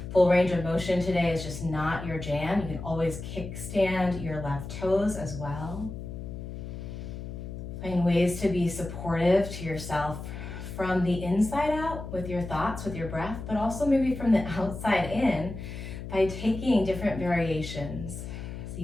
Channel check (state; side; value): noise; left; hum, 9 dB below the sound